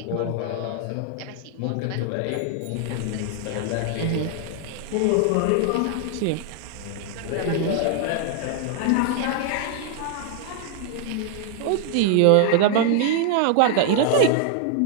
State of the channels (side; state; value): both; different; correlation 0.00